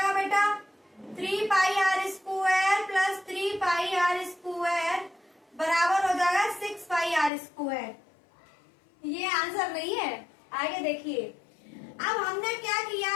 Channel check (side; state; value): right; drops out; at 7.3 s